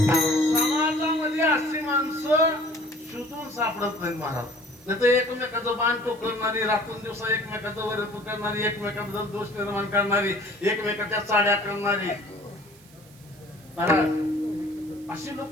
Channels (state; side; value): noise; right; hiss, 25 dB below the sound